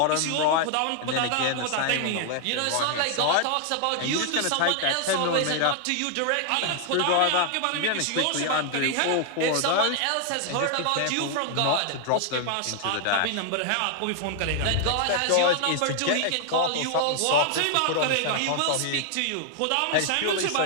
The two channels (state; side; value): different; both; correlation 0.00